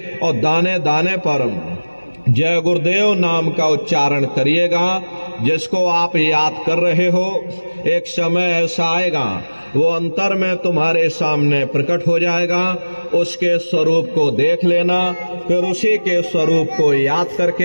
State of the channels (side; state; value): both; inverted; correlation -1.00